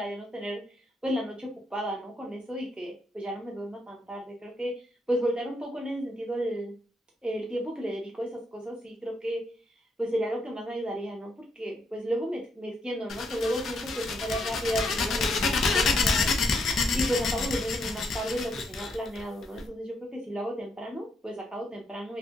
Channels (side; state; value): both; normal; correlation 0.76